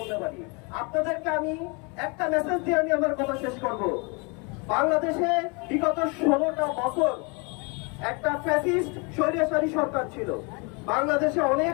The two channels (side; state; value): right; quieter; 31.5 dB